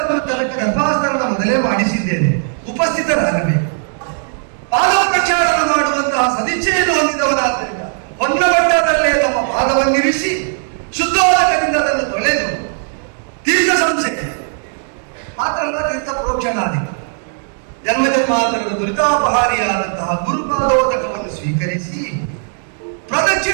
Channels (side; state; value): left; silent; 61 dB below the other